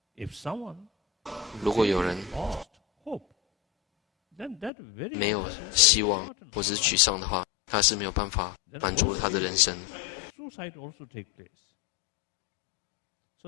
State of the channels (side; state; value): right; drops out; at 4.7 s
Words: if someone 如果有人 lost hope, then that very 没有希望或者是沮丧的话，他是没有办法满足他的人生。 suicide also take place.